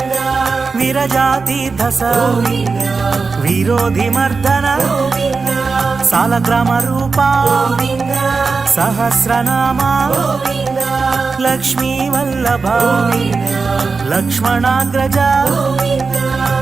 విరజాతీర్థస గోవింద విరోధి మర్దన గోవింద సాలగ్రామ రూప గోవింద సహస్రనామ గోవింద లక్ష్మీ వల్లభ గోవింద లక్ష్మణాగ్రజ గోవింద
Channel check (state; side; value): quieter; left; 4.5 dB